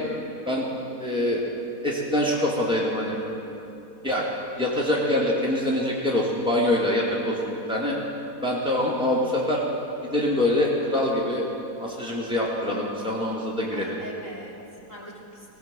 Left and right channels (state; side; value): late; left; 4.1 ms